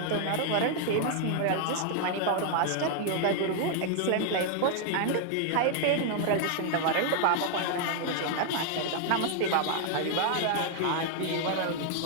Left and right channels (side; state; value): both; different; correlation 0.00